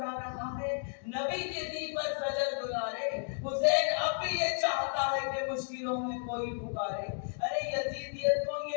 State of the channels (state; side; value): silent; right; digital silence